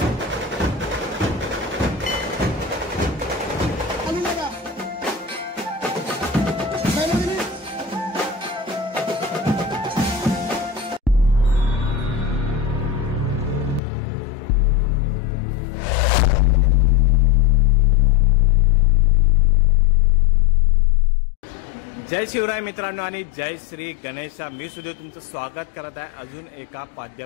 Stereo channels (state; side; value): drops out; right; at 13.8 s